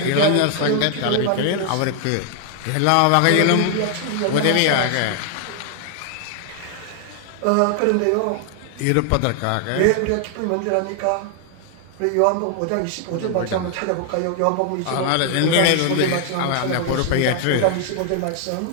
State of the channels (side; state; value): both; different; correlation 0.00